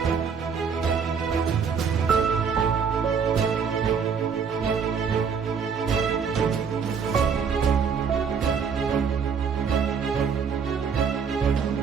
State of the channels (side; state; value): left; quieter; 6.3 dB